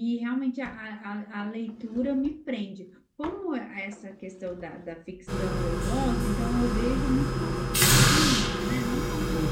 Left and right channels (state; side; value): identical; both; correlation 1.00